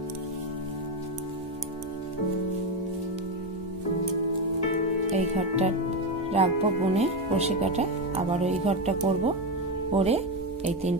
এই ঘরটা রাখবো বুনে ক্রোশে কাটা। আবারও এই ঘরটা করব, করে এই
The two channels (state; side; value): normal; both; correlation 0.12